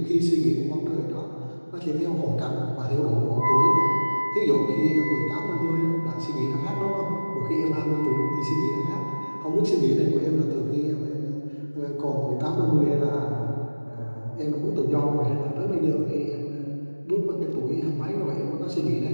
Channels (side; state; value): both; inverted; correlation -1.00